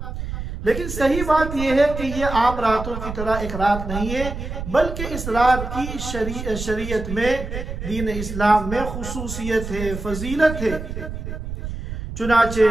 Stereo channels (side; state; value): right; noise; rumble, 7 dB below the sound